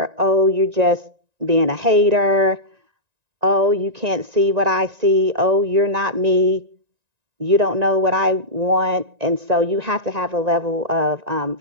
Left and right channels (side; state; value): left; late; 1.9 ms